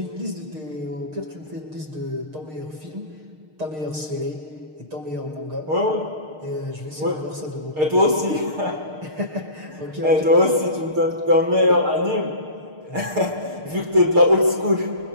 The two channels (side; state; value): left; late; 6.6 ms